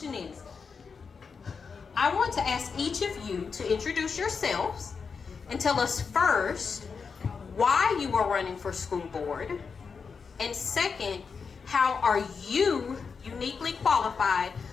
is, I want to ask each of you to introduce yourselves and tell us first why you are running for school board, and second, how are you uniquely qualified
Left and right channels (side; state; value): right; quieter; 5.5 dB